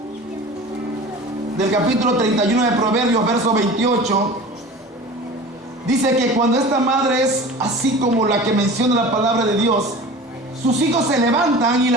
del capítulo 31 de Proverbios, verso 28, dice que cuando esta madre es así como la que menciona la palabra de Dios, sus hijos se levantan y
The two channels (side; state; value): both; normal; correlation 0.38